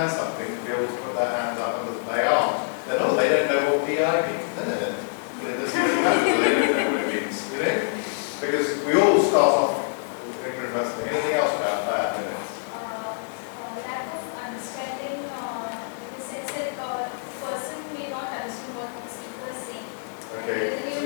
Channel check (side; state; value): right; silent; digital silence